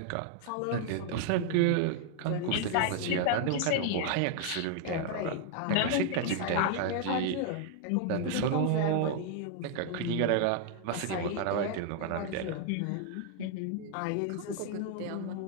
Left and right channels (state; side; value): different; both; correlation 0.00